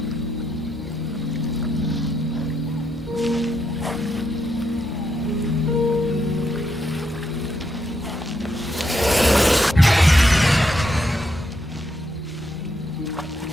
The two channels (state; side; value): normal; both; correlation 0.80